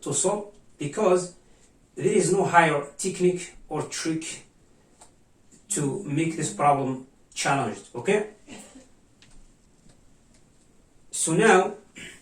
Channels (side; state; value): both; identical; correlation 1.00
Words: solve because there is no higher technique or trick to make this problem challenged. Okay, so now